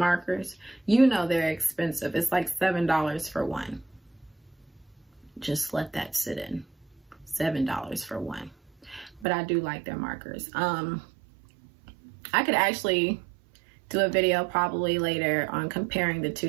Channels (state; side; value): drops out; left; at 9.2 s